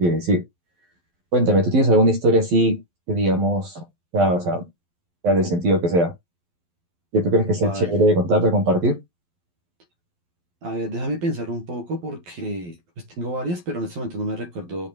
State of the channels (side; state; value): left; late; 12 ms